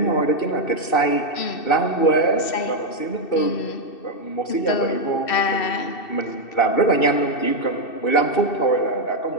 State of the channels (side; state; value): right; late; 2.6 ms